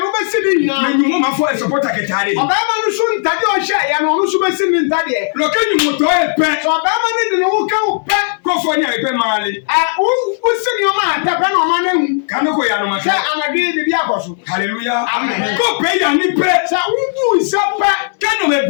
be sidi nyina me nyu ma fo e supporter ketare oba ma no so ntade o hye ya no no so be sidi ntade lo kenyu mo to e pe so oba ma ne de no wo ka wo pe ko fo nya e pe mali wo sidi o ma ta pe no ma na hu kanu ko ya no ma se anade bi akoso hallelujah Amen. ko pe ya ni pe sa wo bu se pe kanu me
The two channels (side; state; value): right; silent; digital silence